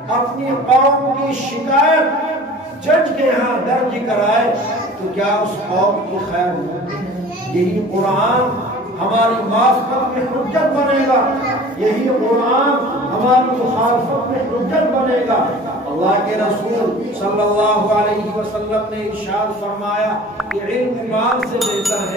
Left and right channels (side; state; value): both; normal; correlation 0.43